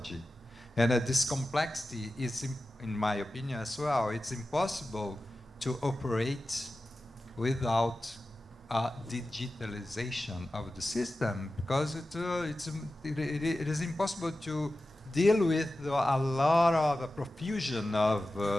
and this complexity is, in my opinion as well, it's impossible to operate without digitalization of the system, because it is impossible to deal with a lot of a profusion of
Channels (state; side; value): normal; both; correlation 0.94